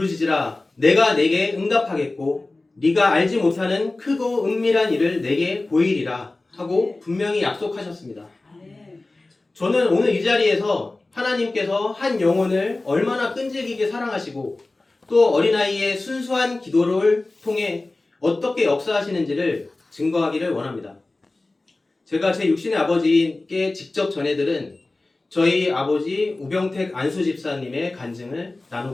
내가 내게 응답하겠고 네가 알지 못하는 크고 은밀한 일을 내게 보이리라 하고 분명히 약속하셨습니다. 저는 오늘 이 자리에서 하나님께서 한 영혼을 얼마나 끈질기게 사랑하시고 또 어린아이의 순수한 기도를 통해 어떻게 역사하시는지를 증거하기를 원합니다. 제가 제 육신의 아버지께 직접 전해들은 저희 아버지 우병택 안수 집사님의 간증을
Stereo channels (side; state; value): right; quieter; 3.1 dB